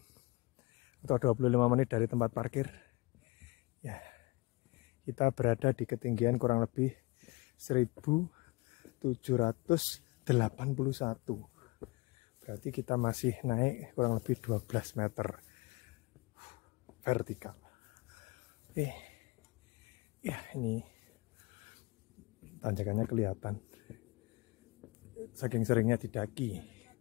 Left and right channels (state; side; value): quieter; right; 24.5 dB